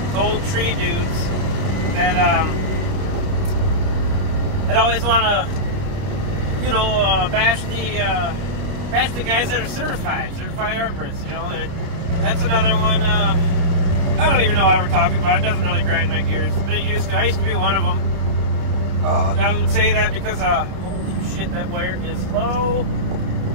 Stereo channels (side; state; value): left; late; 30 ms